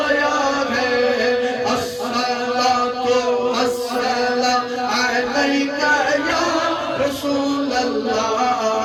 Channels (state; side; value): identical; both; correlation 1.00